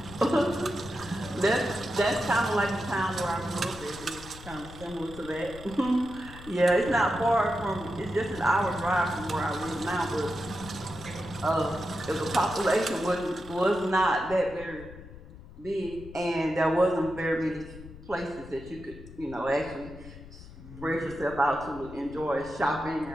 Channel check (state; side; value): noise; left; rumble, 16 dB below the sound